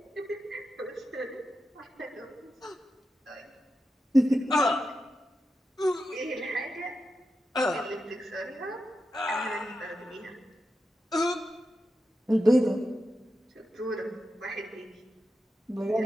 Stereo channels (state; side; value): normal; both; correlation 0.89